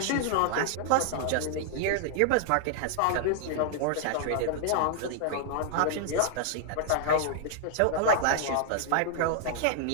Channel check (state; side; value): different; both; correlation 0.00